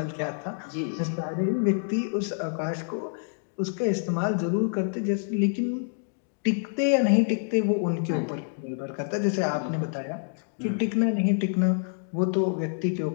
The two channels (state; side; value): silent; right; digital silence